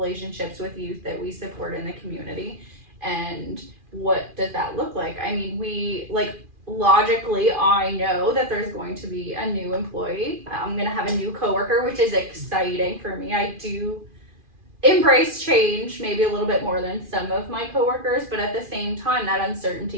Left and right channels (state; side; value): late; left; 2.4 ms